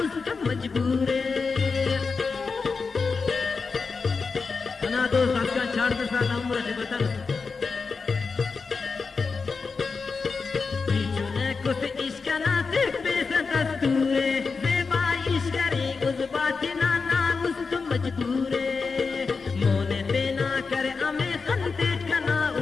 उसका मजबूरे ना दो दोस्त अफगान छाड़ दे साला उम्र से बता बीचूने कुछ इश्क ना देख बेसा दस्तूरे जेबा इश्क रे उस बात ना ना उस तुम मजबूरे मोने पे ना करे अमे खंते कना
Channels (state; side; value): quieter; right; 4.7 dB